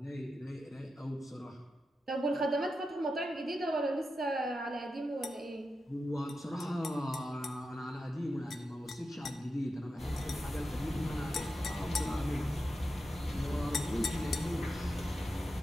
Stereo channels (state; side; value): normal; both; correlation 0.89